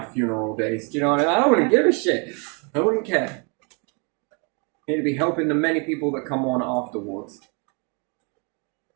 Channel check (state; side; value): quieter; left; 35.2 dB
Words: funeral days. Do you know what I mean? I wouldn't give a shit. I wouldn't care. It'd be helping the many people that come on afterwards.